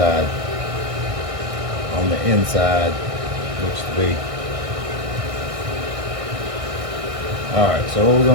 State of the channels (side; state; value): left; late; 1.6 ms